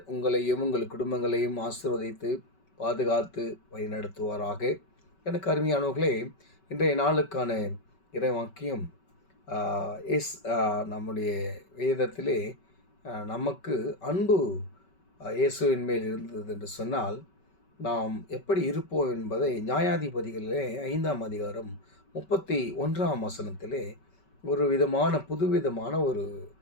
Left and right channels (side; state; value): right; late; 5.3 ms